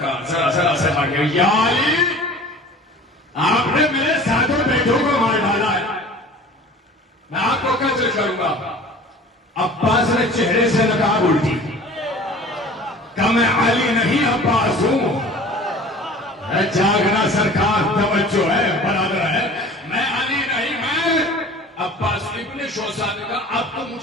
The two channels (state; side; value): normal; both; correlation 0.44